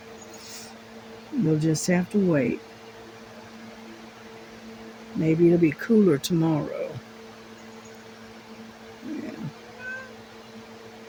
you'll just have to wait. Maybe it'll be cooler tomorrow.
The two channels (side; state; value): both; identical; correlation 1.00